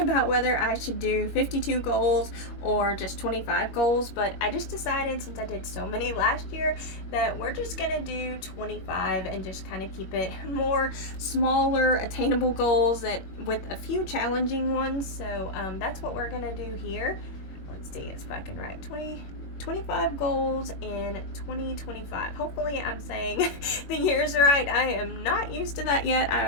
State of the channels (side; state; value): right; late; 21 ms